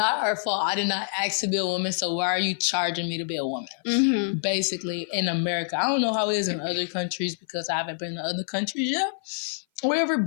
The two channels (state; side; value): silent; right; 56 dB below the other